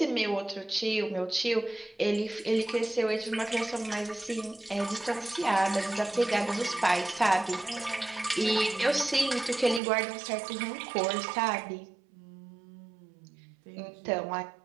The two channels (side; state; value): left; drops out; at 9.8 s